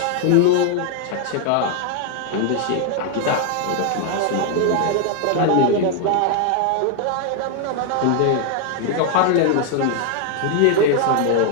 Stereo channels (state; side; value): different; both; correlation 0.00